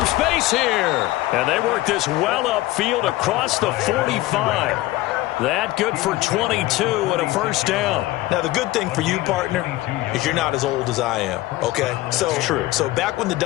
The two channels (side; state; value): right; quieter; 17.4 dB